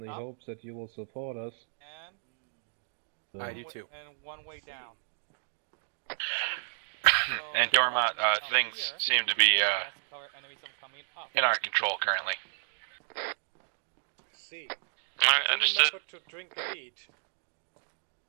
hope that you will support us. And I do too. And one way down. And Dormont, things seem to be in our control currently. See. Alright, understood. Remember to drink and eat.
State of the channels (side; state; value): left; silent; digital silence